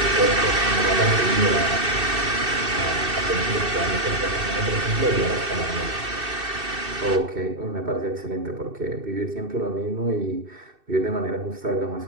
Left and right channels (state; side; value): late; left; 2.6 ms